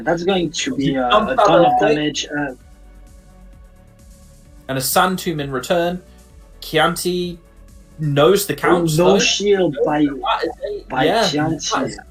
that's going to be a ton of damage. And a Sand Tomb in return. Chianti knows the count. No shield by Chianti.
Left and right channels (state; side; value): identical; both; correlation 1.00